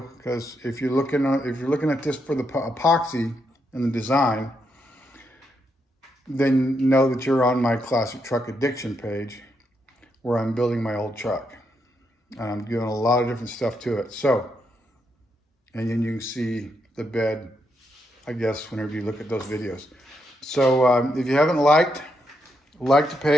because if you're looking at this for the epoxy and the design, then know that you're on my Classic Truck Addiction page, where I'm building my old truck. And I'm doing a lot of different stuff to it. So, and then you can see the bed, I guess, whenever you look at those videos. So if you haven't like the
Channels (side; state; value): both; normal; correlation 0.80